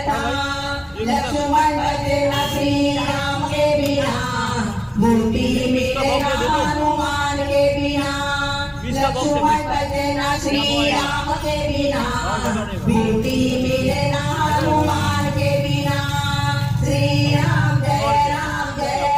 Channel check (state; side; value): identical; both; correlation 1.00